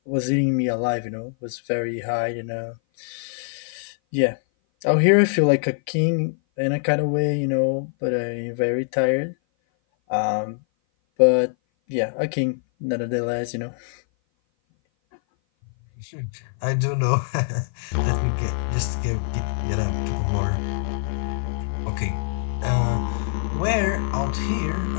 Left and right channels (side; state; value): right; silent; 57 dB below the other